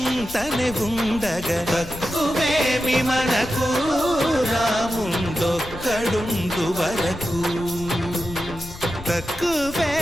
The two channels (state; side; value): noise; left; rumble, 14 dB below the sound